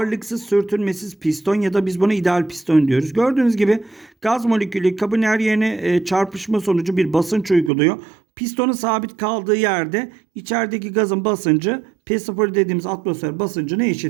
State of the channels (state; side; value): drops out; left; at 7.7 s